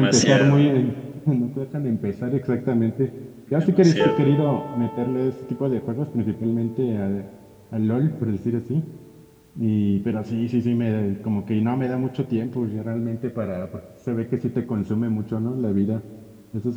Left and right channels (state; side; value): identical; both; correlation 1.00